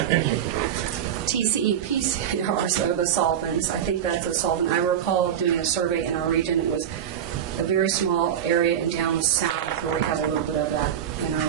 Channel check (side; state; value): left; quieter; 9.4 dB